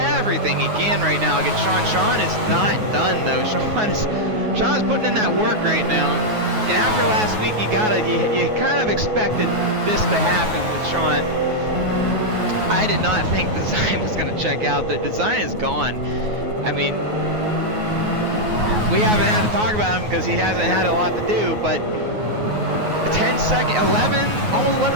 he can right now against Sean. Sean is not done, though. Sean is putting in that work right now. And after last week, you kind of expected this to happen with Sean. I did not think Design was going to check out. The Design is gone. I mean, we haven't had to talk about him because he hasn't had a lot to do, but a 10-second,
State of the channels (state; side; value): late; left; 9.4 ms